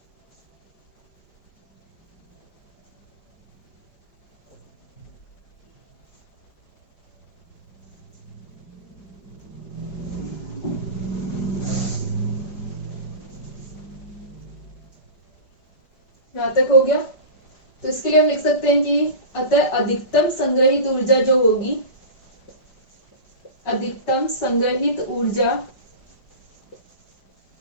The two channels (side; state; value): right; late; 5.0 ms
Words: यहाँ तक हो गया। तो इसके लिए हम लिख सकते हैं कि अतः अधिकतम संग्रहित ऊर्जा जो होगी, अधिकतम संग्रहित ऊर्जा,